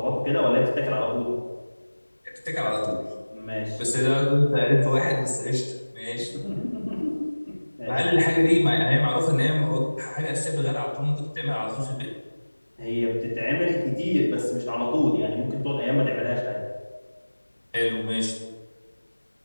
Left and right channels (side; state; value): both; inverted; correlation -1.00